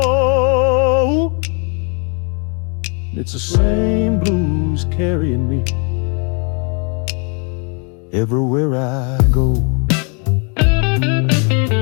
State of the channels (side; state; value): right; quieter; 36.8 dB